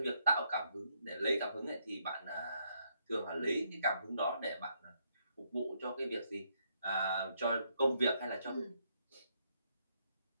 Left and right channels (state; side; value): inverted; both; correlation -0.74